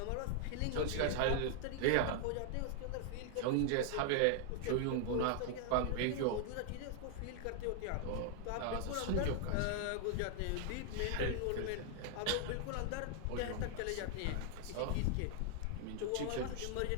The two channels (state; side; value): different; both; correlation 0.00